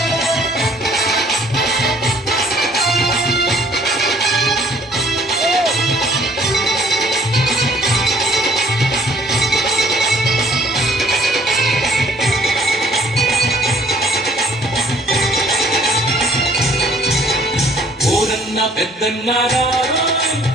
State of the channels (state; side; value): normal; both; correlation 0.59